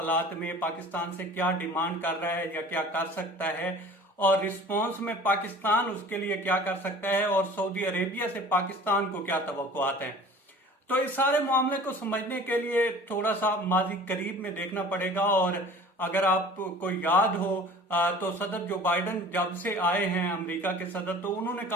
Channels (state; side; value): normal; both; correlation 0.44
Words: में पाकिस्तान से क्या डिमांड कर रहा है या क्या कर सकता है, और रिस्पॉन्स में पाकिस्तान उसके लिए क्या कर सकता है, और सऊदी अरेबिया से पाकिस्तान को क्या तवक्कुआत हैं। तो इस सारे मामले को समझने के लिए थोड़ा सा माजी करीब में देखना पड़ेगा। और अगर आपको याद हो तो सदर जो बाइडन जब से आए हैं अमेरिका के सदर, तो उन्होंने